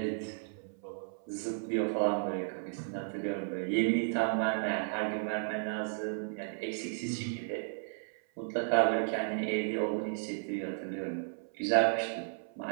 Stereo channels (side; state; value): left; silent; 55 dB below the other